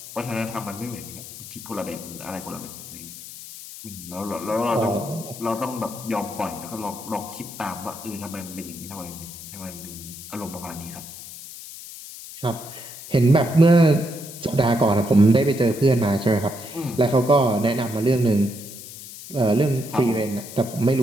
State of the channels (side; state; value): left; noise; hiss, 13 dB below the sound